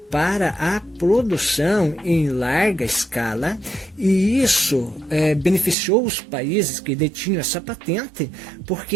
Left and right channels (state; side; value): drops out; left; at 5.8 s